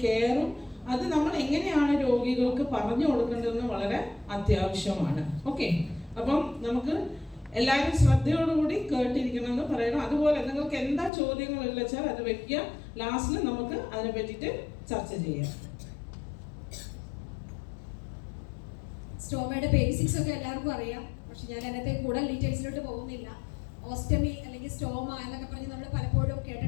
കെയറും അത് നമ്മൾ എങ്ങനെയാണ് രോഗികൾക്ക് പറഞ്ഞു കൊടുക്കേണ്ടതെന്ന് വളരെ അത്യാവശ്യമാണ്. ഓക്കെ, അപ്പം നമുക്ക് എല്ലാവരും ശ്രദ്ധയോടുകൂടി കേട്ടിരിക്കണമെന്ന് പറയണം. അതുപോലെ നിങ്ങൾക്ക് എന്താ ചോദ്യങ്ങളുള്ള വെച്ചാൽ അത് വെക്കുക. ലാസ്റ്റിൽ നമുക്ക് അതിനെ പറ്റിയിട്ട് ചർച്ച ചെയ്യാം. സ്റ്റോമയുടെ ബേസിക്സ് ഒക്കെ എല്ലാവർക്കും അറിയാം, പക്ഷെ ഞാൻ അതിനകത്തെ കൂടുതൽ ഡീറ്റെയിൽസിലോട്ട് പോകുന്നില്ല. ഓസ്റ്റമി അല്ലെങ്കിൽ സ്റ്റോമ എന്നൊക്കെ പറഞ്ഞ് നമ്മൾ പലപ്പോഴും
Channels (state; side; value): drops out; right; at 11.1 s